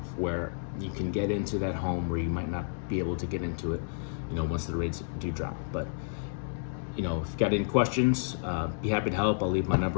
where you can get into that home where you might not be able to get into it, once the rates do drop. But if you've got any questions, be happy to help. I'll leave my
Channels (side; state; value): right; silent; digital silence